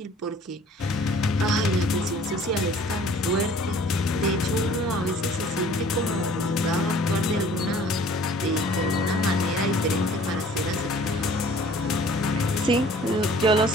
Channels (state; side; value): normal; both; correlation 0.52